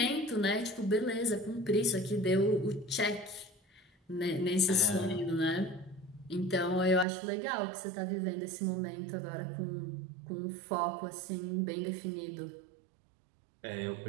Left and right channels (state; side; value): drops out; left; at 7.1 s